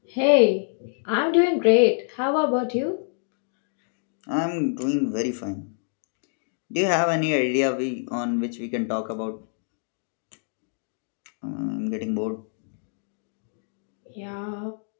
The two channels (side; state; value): right; silent; digital silence